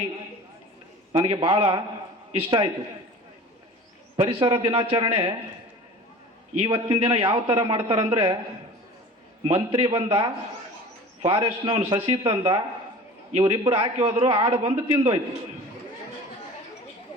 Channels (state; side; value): normal; both; correlation 0.39